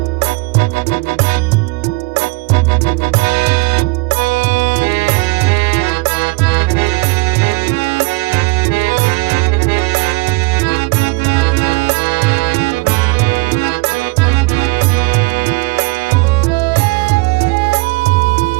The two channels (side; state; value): left; quieter; 25.1 dB